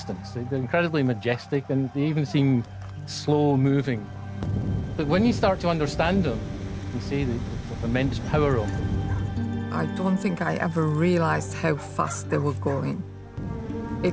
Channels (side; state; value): both; identical; correlation 1.00